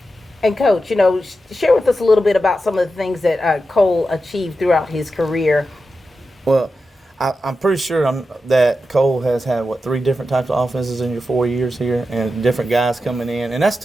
And Coach, you know, share with us a little bit about some of the things that Cole achieved throughout his career. Well, I'm pretty sure that Cole has had, 3 different types of offenses in your 4 years here, and different guys coming in, and that's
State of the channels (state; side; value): normal; both; correlation 0.90